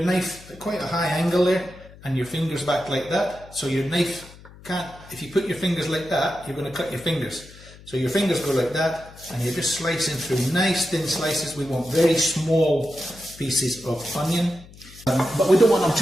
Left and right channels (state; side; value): noise; left; hum, 20 dB below the sound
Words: knife at quite a high angle there, and your fingers back like that, so your knife can't, if you put your fingers like that, you're going to cut your fingers. So your fingers go like that, and you're just slicing through nice thin slices. We want very small pieces of onion, but we don't want them